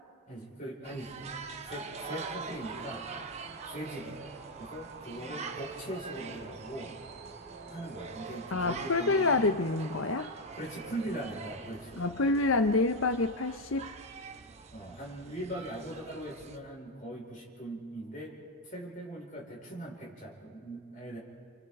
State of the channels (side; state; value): both; normal; correlation 0.07